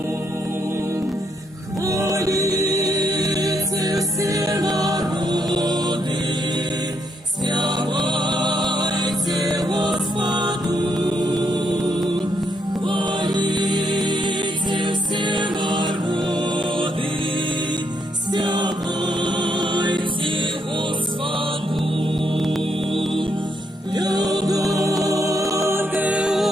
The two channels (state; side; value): normal; both; correlation 0.77